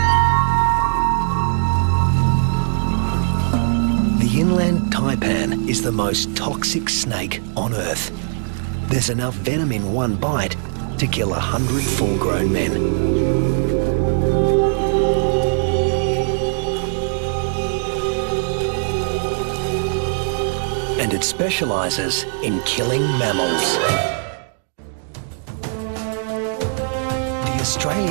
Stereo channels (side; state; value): left; silent; digital silence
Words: The inland taipan is the most toxic snake on Earth. There's enough venom in one bite to kill 100 full-grown men. And it specialises in killing mammals. The